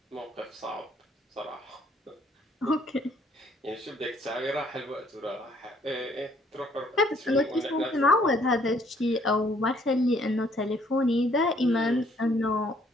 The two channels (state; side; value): normal; both; correlation 0.64